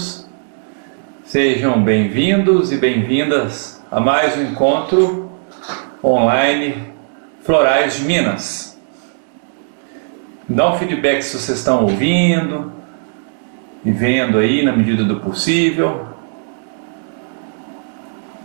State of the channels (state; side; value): silent; left; digital silence